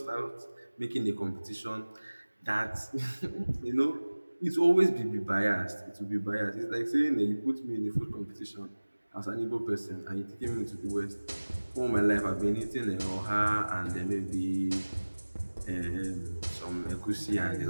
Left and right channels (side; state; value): both; inverted; correlation -1.00